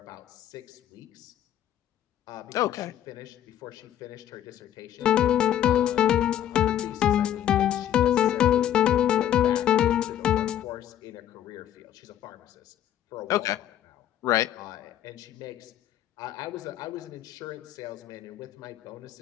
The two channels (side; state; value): right; quieter; 11.1 dB